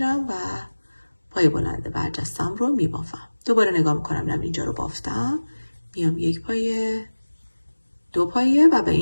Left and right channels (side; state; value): both; inverted; correlation -1.00